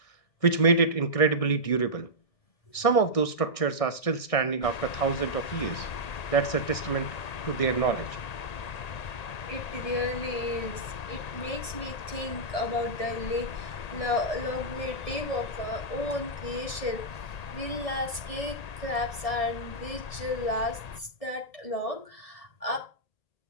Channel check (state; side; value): late; right; 1.7 ms